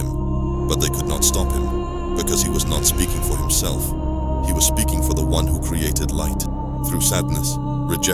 but they could not stop him, because he was not speaking for himself. He was speaking for the one who created light. Through sadness,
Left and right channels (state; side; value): identical; both; correlation 1.00